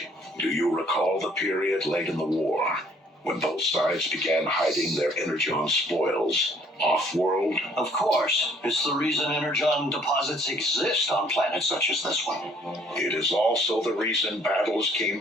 Do you recall the period late in the war when both sides began hiding their energon spoils off-world? Of course. It's the reason energon deposits exist on planets such as this one. It is also the reason battles came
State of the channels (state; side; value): normal; both; correlation 0.60